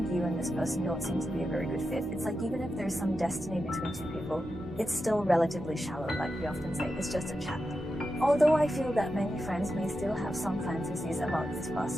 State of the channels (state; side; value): normal; both; correlation 0.89